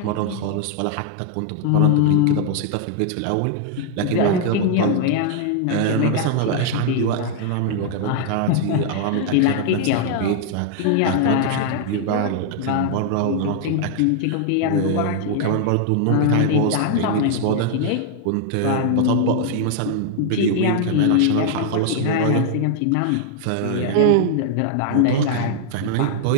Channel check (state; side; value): different; both; correlation 0.00